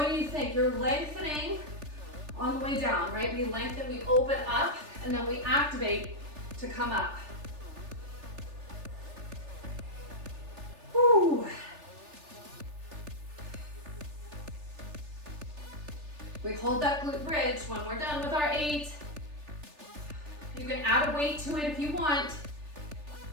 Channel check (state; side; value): late; left; 3.4 ms